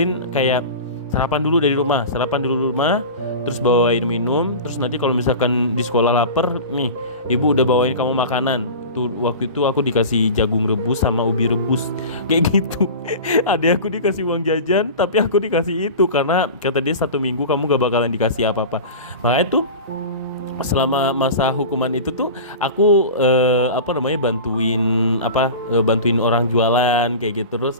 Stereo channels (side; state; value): both; inverted; correlation -0.32